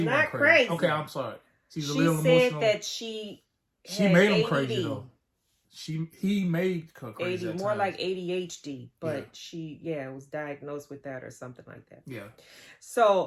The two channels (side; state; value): both; identical; correlation 1.00